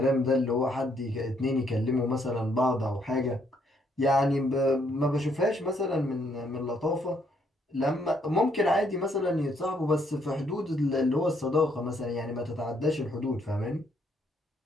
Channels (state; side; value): normal; both; correlation 0.71